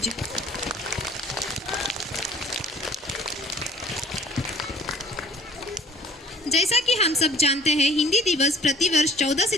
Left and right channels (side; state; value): both; normal; correlation 0.52